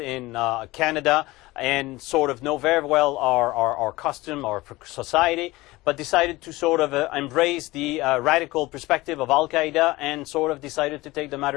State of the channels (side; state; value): right; quieter; 19.9 dB